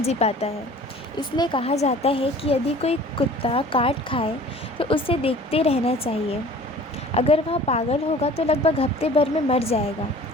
पाता है। इसलिए कहा जाता है कि यदि कोई कुत्ता काट खाए तो उसे देखते रहना चाहिए। अगर वह पागल होगा तो लगभग हफ्ते भर में मर जाएगा।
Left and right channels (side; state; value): both; normal; correlation 0.47